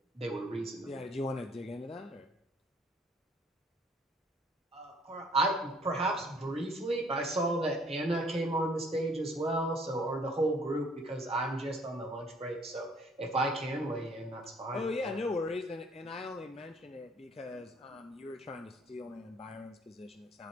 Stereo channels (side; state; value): both; normal; correlation 0.60